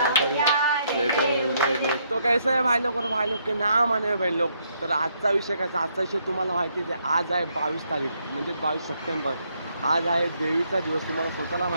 तो कैसा है भाई लोग के नाम आने बहन लोग. तर आजचा विषय कसा, आजचा विषय तुम्हाला माहितीच आहे. आज आहे 22 तारीख म्हणजे 22 सप्टेंबर. आज आहे देवीचा दिवस. तुम्हाला स्वतःला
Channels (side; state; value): both; inverted; correlation -0.73